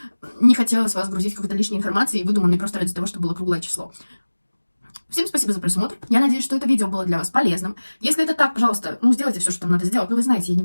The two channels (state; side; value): inverted; both; correlation -1.00